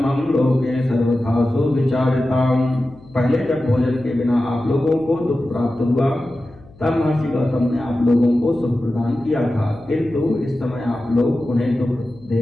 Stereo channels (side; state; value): left; noise; hum, 24 dB below the sound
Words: लोके सर्वथा सुविचारिताम्। पहले जब भोजन के बिना आप लोगों को दुख प्राप्त हुआ तब महर्षि गौतम ने आप लोगों को सुख प्रदान किया था, किंतु इस समय आप लोग उन्हें दुख दे